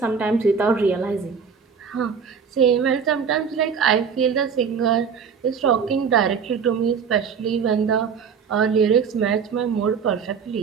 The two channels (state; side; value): quieter; left; 6.4 dB